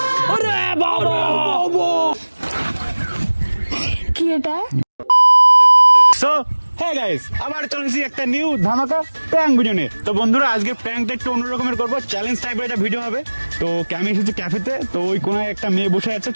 কি এটা? সো হ্যাঁ গাইস, আবার চলেছি একটা নিউ ধামাকা প্র্যাঙ্ক ভিডিও নিয়ে। তো বন্ধুরা, আজকে প্র্যাঙ্কটা একটু অন্যরকমের করবো, চ্যালেঞ্জ টাইপের একটা ভিডিও হবে। তো আমি এসেছি ক্যাফেতে, তো ওই কোনায় একটা মেয়ে বসে আছে,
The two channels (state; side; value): inverted; both; correlation -1.00